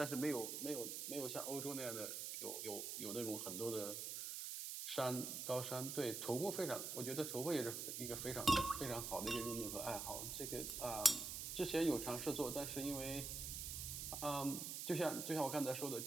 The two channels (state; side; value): noise; right; hiss, 4 dB below the sound